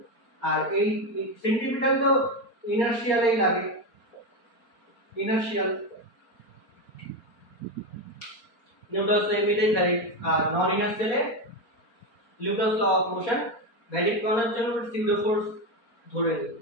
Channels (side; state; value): right; late; 4.4 ms